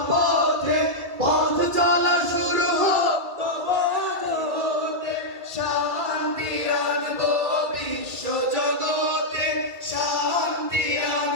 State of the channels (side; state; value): left; late; 2.3 ms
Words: পথ চলা শুরু হোক তবে আজ হতে। শান্তি আনবো বিশ্ব জগতে, শান্তি